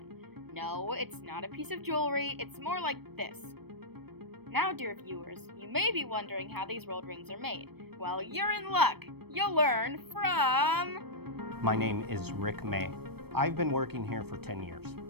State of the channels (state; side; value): late; left; 0.97 ms